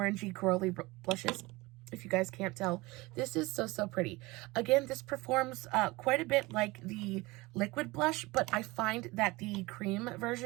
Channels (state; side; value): quieter; left; 22.2 dB